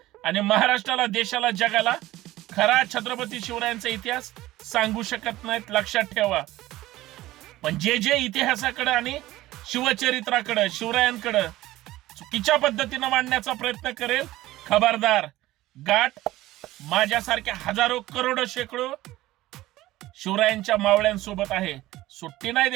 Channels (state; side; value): quieter; left; 16.6 dB